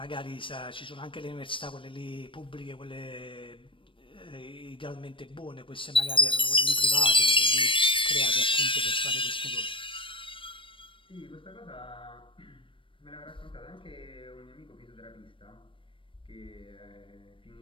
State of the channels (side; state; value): right; late; 0.25 ms